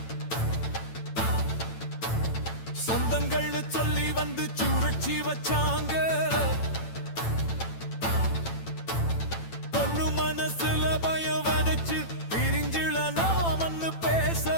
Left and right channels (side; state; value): right; late; 9.0 ms